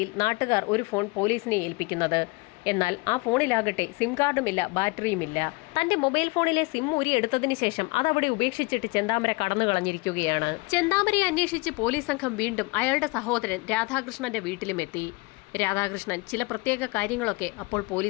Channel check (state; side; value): quieter; right; 26.0 dB